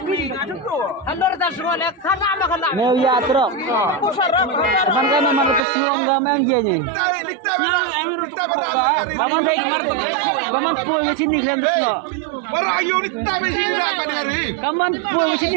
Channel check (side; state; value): left; drops out; at 5.6 s